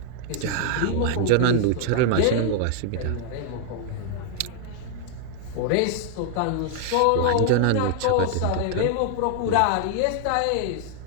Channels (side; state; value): both; different; correlation 0.00